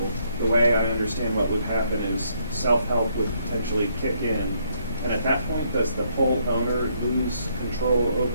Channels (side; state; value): both; inverted; correlation -0.71